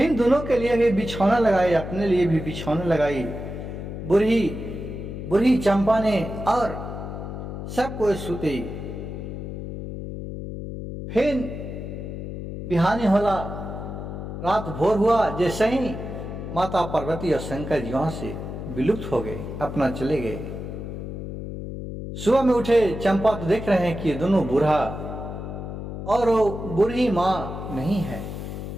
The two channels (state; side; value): noise; left; hum, 7 dB below the sound